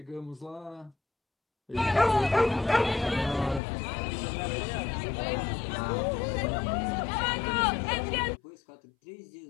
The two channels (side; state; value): right; drops out; at 3.6 s